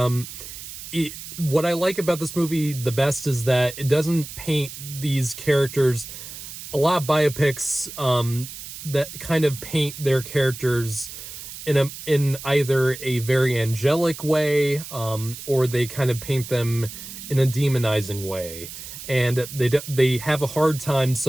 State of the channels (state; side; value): noise; right; hiss, 12 dB below the sound